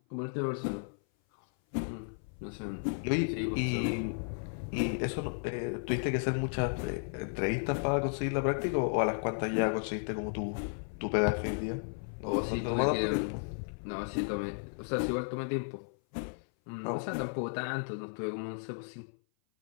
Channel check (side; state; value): right; silent; 55 dB below the other